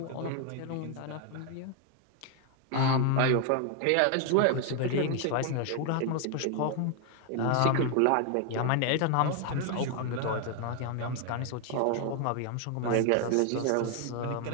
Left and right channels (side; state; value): both; different; correlation 0.00